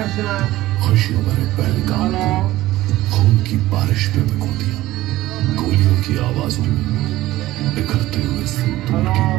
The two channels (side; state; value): left; quieter; 16.3 dB